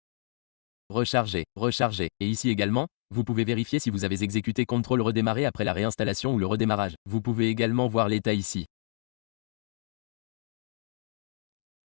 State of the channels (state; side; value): silent; right; digital silence